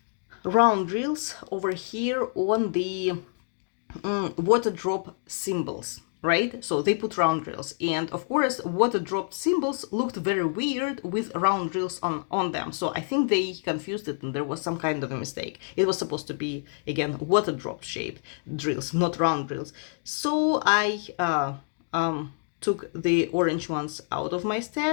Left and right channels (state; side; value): silent; right; digital silence